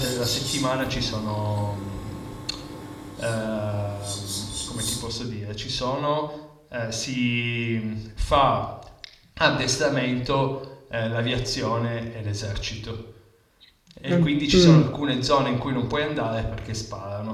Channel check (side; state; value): both; identical; correlation 1.00